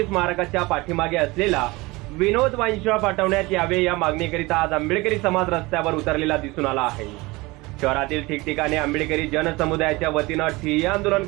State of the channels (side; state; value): left; quieter; 22.6 dB